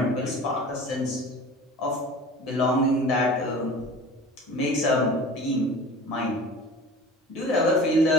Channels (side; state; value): both; normal; correlation 0.40